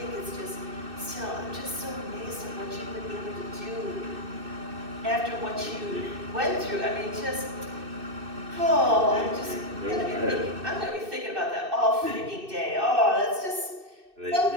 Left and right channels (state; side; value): late; left; 2.6 ms